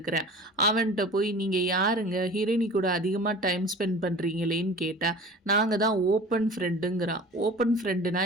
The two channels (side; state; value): both; normal; correlation 0.40